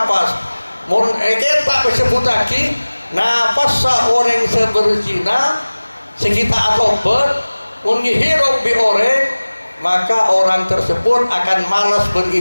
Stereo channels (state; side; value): inverted; both; correlation -1.00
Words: mun kita disebut lagi nafas orang seberzina sekitar atobat mun hirup bi orang maka orang tersebut akan malas